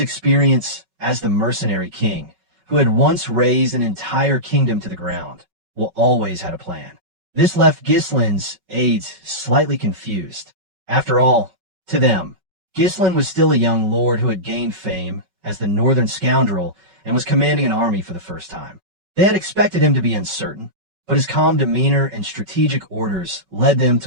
as the Mercenary King, who had once razed an entire kingdom to the ground, Will always had a plan. This left Ghislain's aides slightly confused. After all, to them, Ghislain was still a young lord who had gained fame as the northern scoundrel and was commanding an army for the first time. They had expected him to be uncertain, but his calm demeanor and strategic orders led them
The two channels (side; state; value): left; late; 5.3 ms